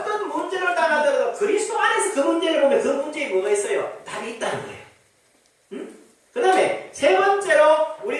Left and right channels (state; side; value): identical; both; correlation 1.00